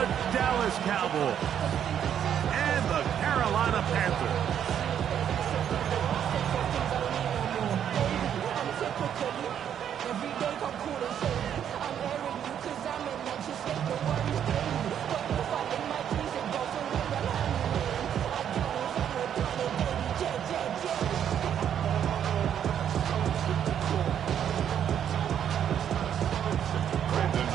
Dallas Cowboys and the Carolina Panthers.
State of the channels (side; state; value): left; quieter; 9.2 dB